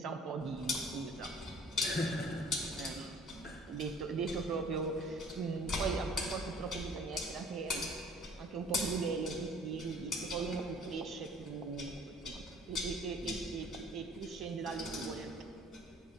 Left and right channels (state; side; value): normal; both; correlation 0.53